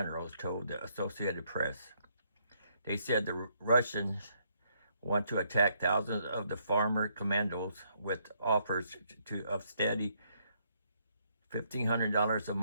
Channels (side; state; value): both; inverted; correlation -0.72